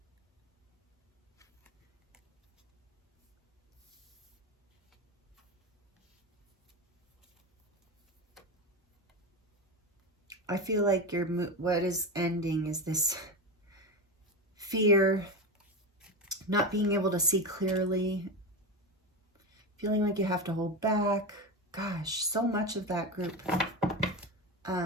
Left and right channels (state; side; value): normal; both; correlation 0.19